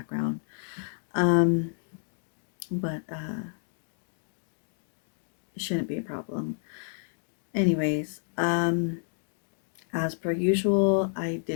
but it shouldn't be a problem. Anyways, as per usual, I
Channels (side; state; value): right; silent; 58 dB below the other